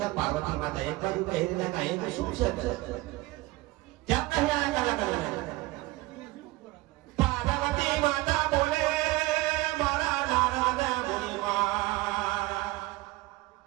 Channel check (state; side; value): quieter; left; 20.1 dB